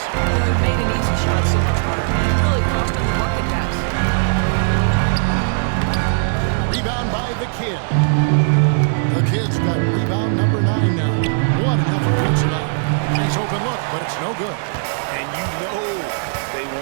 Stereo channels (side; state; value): left; silent; digital silence